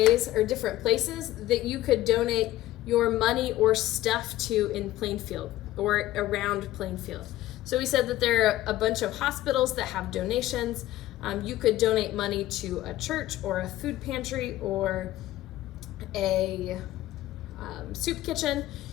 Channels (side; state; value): right; quieter; 15.2 dB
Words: or different places that you could donate your money or stuff to in Plainfield or around Plainfield. So we said that there are a bunch of hospitals that have donations. You could donate money to a church or a food pantry or a soup kitchen.